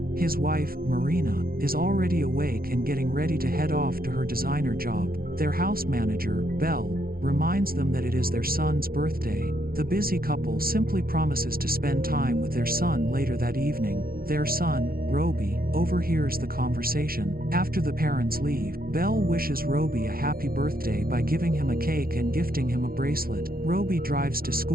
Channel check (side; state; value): left; late; 0.43 ms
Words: His wife, Marina, is already awake and getting ready to head off to her designer job. Their house manager, Belle, reminds them that it is their son's birthday. The busy couple simply promises to spend time with their son later that evening. Their son, Roby, overhears the conversation. After the parents leave, Belle wishes Roby a happy birthday by giving him a cake and gifting him a bracelet. Roby drives to